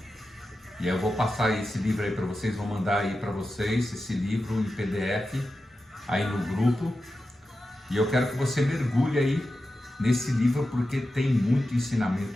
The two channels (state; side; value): normal; both; correlation 0.91